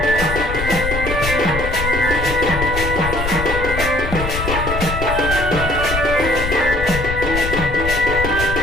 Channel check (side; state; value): left; noise; rumble, 5 dB below the sound